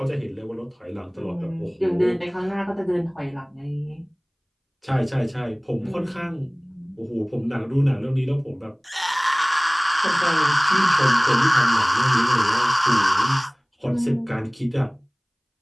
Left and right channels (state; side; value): identical; both; correlation 1.00